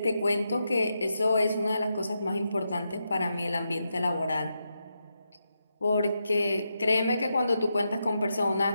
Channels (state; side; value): inverted; both; correlation -0.85